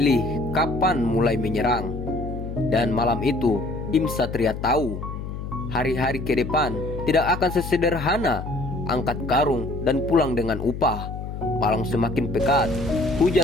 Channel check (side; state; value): left; noise; hum, 7 dB below the sound